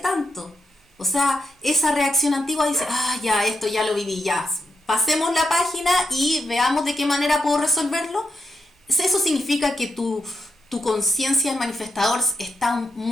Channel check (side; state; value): both; normal; correlation 0.83